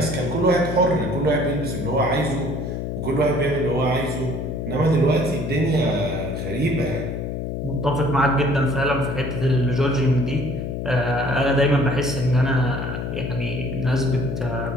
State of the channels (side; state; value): left; noise; hum, 4 dB below the sound